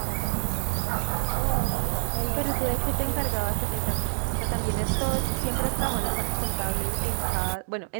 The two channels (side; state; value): left; silent; digital silence